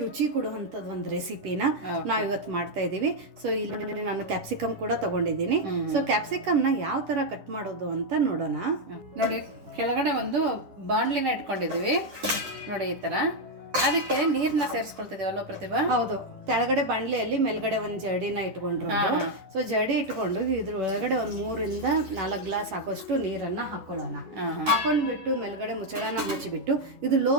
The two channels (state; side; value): late; left; 10 ms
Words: ರುಚಿ ಕೊಡುವಂತದ್ ಒಂದು ರೆಸಿಪಿನ ನಾವ್ ಇವತ್ತು ಮಾಡ್ತಾ ಇದೀವಿ. ಸೊ ಇಲ್ಲಿ ನಾನು ಕ್ಯಾಪ್ಸಿಕಮ್ ಕೂಡ ತಗೊಂಡಿದ್ದೀನಿ. ಸೊ ಕ್ಯಾಪ್ಸಿಕಮ್ ನ ಯಾವ ತರ ಕಟ್ ಮಾಡೋದು ಅಂತ ನೋಡೋಣ. ನೋಡಿ, ಕೆಳಗಡೆ ಒಂದು ಬಾಣ್ಲಿನ ಇಟ್ಕೊಂಡಿದೀವಿ ನೋಡಿ, ಈ ತರ. ಅದಕ್ಕೆ ನೀರ್ನ ಸೇರಿಸ್ಕೊಳ್ತಿದೀವಲ್ಲ ಪ್ರತಿಭಾ? ಹೌದು, ಕೆಳಗಡೆ ಬಾಣ್ಲಿಯಲ್ಲಿ ಮೇಲ್ಗಡೆ ಒಂದು ಜರಡಿನ ಇಟ್ಕೊಂಡ್ರು. ಸೊ ಜರಡಿ ಇಟ್ಕೊಂಡು ಇದ್ರ ಒಳಗಡೆ ಒಂದು 3 ಇಂದ 4 ಗ್ಲಾಸ್ ಹಾಕೋಷ್ಟು ನೀರನ್ನ ಹಾಕೊಳ್ಳೋಣ. ಹಾಕೊಂಡ್ಬಿಟ್ಟು ಮೇಲ್ಗಡೆ ಮುಚ್ಚಳನ ಮುಚ್ಚಿಬಿಟ್ಟು ಇದು ಲೋ